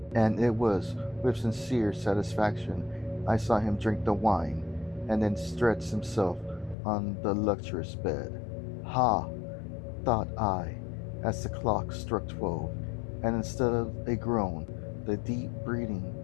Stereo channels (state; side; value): drops out; right; at 6.8 s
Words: And it was with sincere satisfaction I saw him drink the wine, and then stretch himself on the luxurious bed. Ha! Thought I, as the clock struck 12, and instead of a groan, the deep breathing